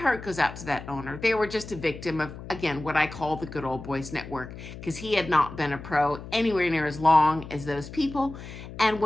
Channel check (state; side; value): noise; left; hum, 13 dB below the sound